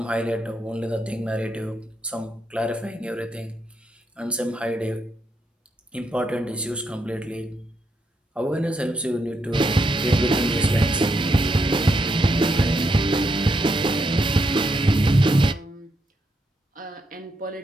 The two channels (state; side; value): normal; both; correlation 0.80